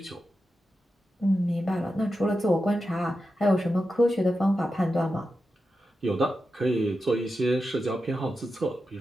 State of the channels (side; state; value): both; normal; correlation 0.90